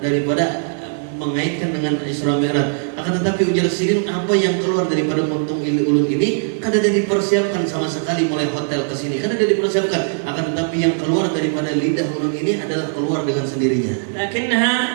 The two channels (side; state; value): left; silent; 59 dB below the other